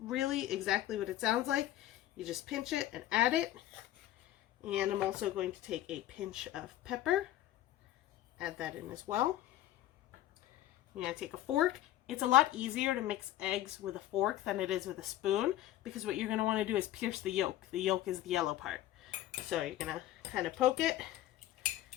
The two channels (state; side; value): quieter; right; 13.9 dB